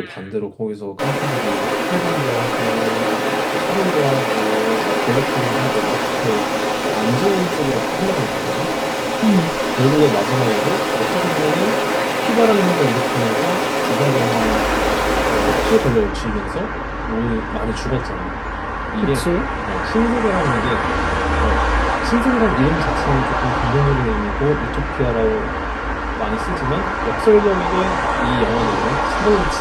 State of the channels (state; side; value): identical; both; correlation 1.00